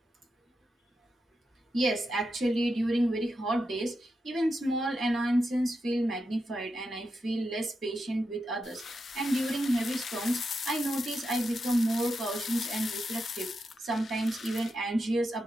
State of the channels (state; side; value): normal; both; correlation 0.87